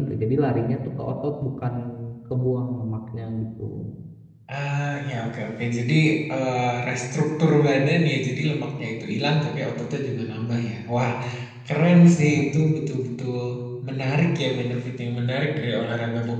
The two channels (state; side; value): identical; both; correlation 1.00